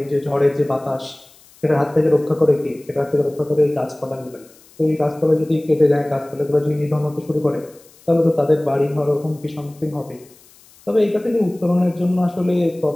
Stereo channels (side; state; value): left; noise; hiss, 27 dB below the sound